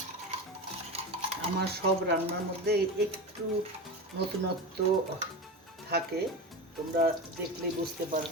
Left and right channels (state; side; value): normal; both; correlation 0.24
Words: আমার সব রান্নার মধ্যে একটু নতুনত্ব থাকে, তোমরা দেখলেই বুঝতে